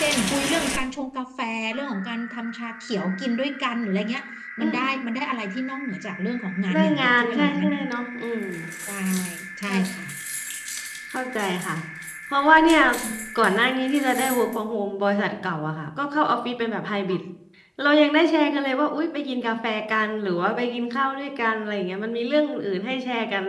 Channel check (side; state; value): both; identical; correlation 1.00